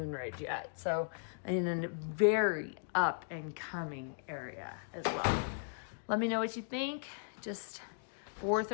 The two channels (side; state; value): right; silent; digital silence